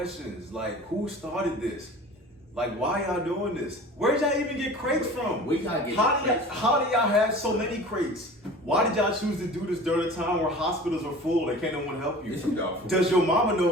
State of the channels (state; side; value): normal; both; correlation 0.41